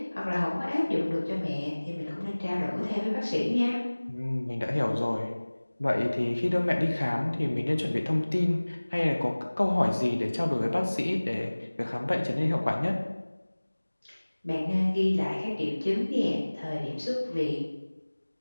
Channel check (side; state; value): both; inverted; correlation -1.00